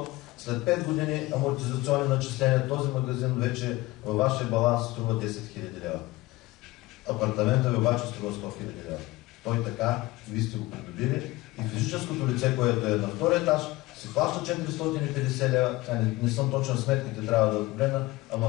След 5 години амортизационни начисления този магазин вече във вашия баланс струва 10 000 лева. Апартамента ви обаче струва 100 000 лева. Той така, вие сте го придобили и физическото лице, което е на втория етаж, си плаща 450 лева, не съм точен сметките, трябва да погледна, а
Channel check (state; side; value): quieter; right; 19.9 dB